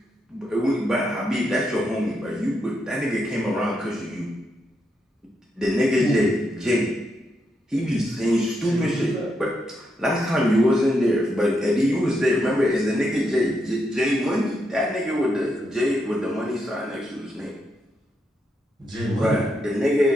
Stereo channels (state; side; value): normal; both; correlation 0.81